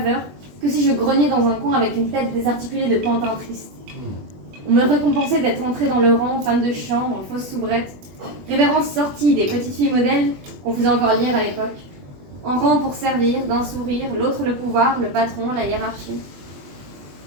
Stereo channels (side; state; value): left; late; 21 ms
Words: que si je grognais dans un coin avec une tête désarticulée de pantin triste. On me récompensait d'être entrée dans le rang, femme de chambre, en fausse soubrette, révérence sortie des petites filles modèles qu'on faisait encore lire à l'époque, en rang pour servir, d'un sourire, l'autre le pouvoir, le patron, la hiérarchie.